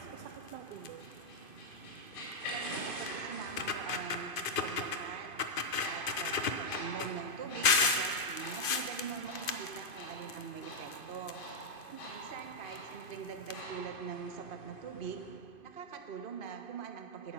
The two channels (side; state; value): right; late; 2.5 ms